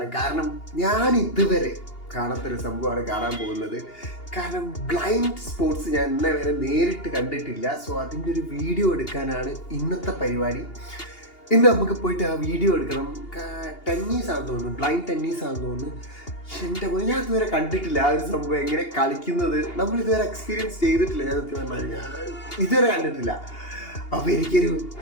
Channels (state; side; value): late; right; 2.8 ms